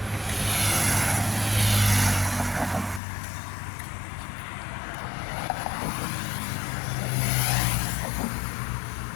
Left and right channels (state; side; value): drops out; right; at 3.0 s